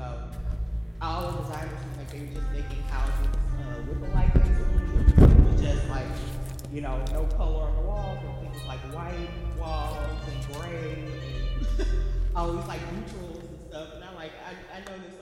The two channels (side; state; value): both; identical; correlation 1.00